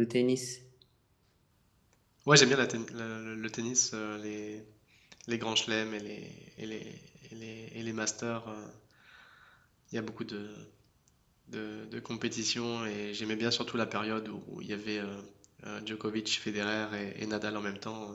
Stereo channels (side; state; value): both; identical; correlation 1.00